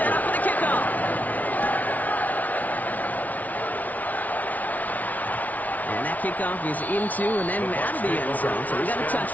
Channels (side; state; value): right; late; 0.075 ms